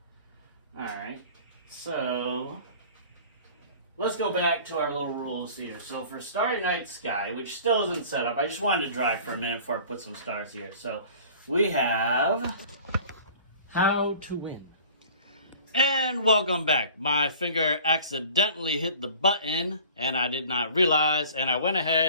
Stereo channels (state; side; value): inverted; both; correlation -0.45